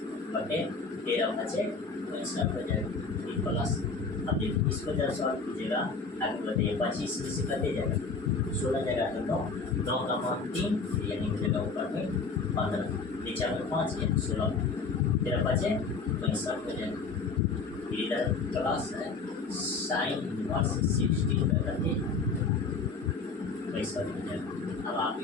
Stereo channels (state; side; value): quieter; right; 4.4 dB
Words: बटे 13 बचे, तो इसका हो जाएगा प्लस। अब देखिए इसको जब सॉल्व कीजिएगा आगे बताइए 25 में से कटे जाएगा, 16 जगह तो 9 का मान 3, यानी हो जाएगा ऊपर में 15, नीचे में 5, यानी 16, 13 बचे, तो इसका हो जाएगा इधर प्लस है साइन इनवर्स 60 करते पैसा हो जाएगा। अब आप